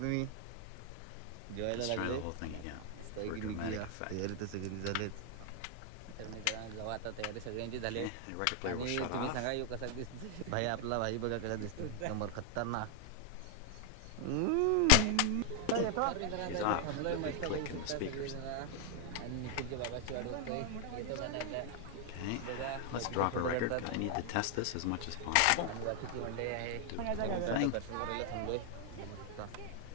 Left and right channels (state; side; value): different; both; correlation 0.00